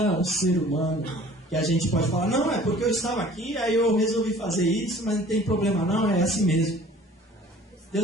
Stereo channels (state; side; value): normal; both; correlation 0.49